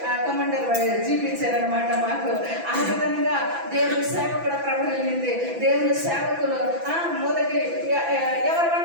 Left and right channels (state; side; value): late; left; 6.0 ms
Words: కమాండర్ చూపించారనమాట మాకు. ఆ విధంగా దేవుని సేవ కూడా ప్రభావించింది. దేవుని సేవకులు మొదటి ఎవరు